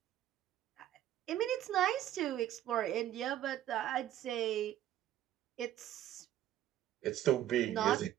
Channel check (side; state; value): left; quieter; 12.4 dB